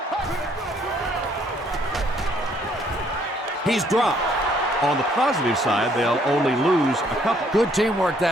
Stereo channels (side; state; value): both; normal; correlation 0.65